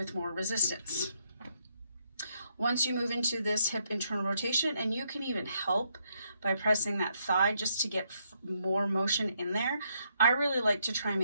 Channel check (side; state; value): both; inverted; correlation -0.74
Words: more resistance. Once you move into this hip internal rotation, and you can even help by pressing that thigh just to get more motion in there. I really like to try and